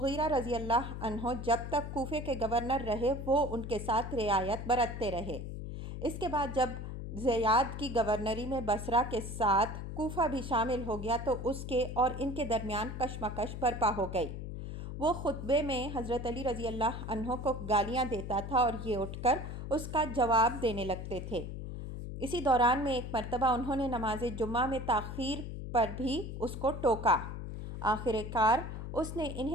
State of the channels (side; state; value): left; noise; hum, 7 dB below the sound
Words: رضی اللہ عنہ جب تک کوفے کے گورنر رہے وہ ان کے ساتھ رعایت برتتے رہے۔ اس کے بعد جب زیاد کی گورنری میں بصرہ کے ساتھ کوفہ بھی شامل ہو گیا تو اس کے اور ان کے درمیان کشمکش برپا ہو گئی۔ وہ خطبے میں حضرت علی رضی اللہ عنہ کو گالیاں دیتا تھا اور یہ اٹھ کر اس کا جواب دینے لگتے تھے۔ اسی دوران میں ایک مرتبہ انہوں نے نماز جمعہ میں تاخیر پر بھی اس کو ٹوکا۔ آخر کار اس نے